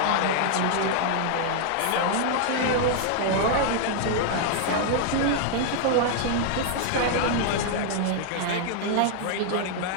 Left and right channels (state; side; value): different; both; correlation 0.00